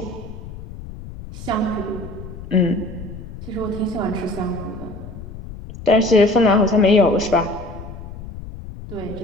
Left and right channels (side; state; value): left; noise; rumble, 12 dB below the sound